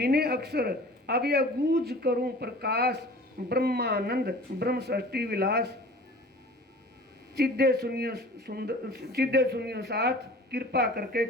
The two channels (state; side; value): normal; both; correlation 0.43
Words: अक्षर। अब यह गूंज करूं प्रकाश, ब्रह्मानंद ब्रह्म सृष्टि विलास, चिद्दे सुनियो सुंदर, चिद्दे सुनियो साथ, कृपा करके